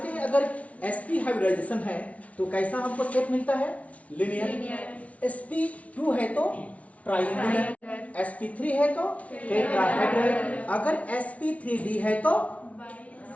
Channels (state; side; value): late; right; 0.066 ms